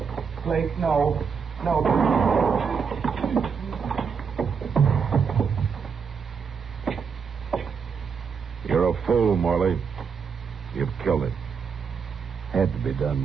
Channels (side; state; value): left; quieter; 6.2 dB